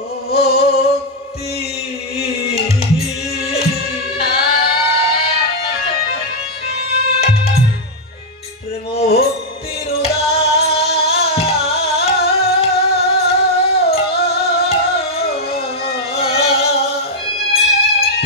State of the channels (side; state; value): both; normal; correlation -0.02